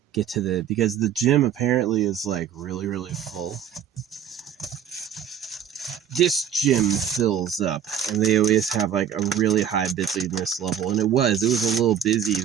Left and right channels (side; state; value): left; quieter; 9.0 dB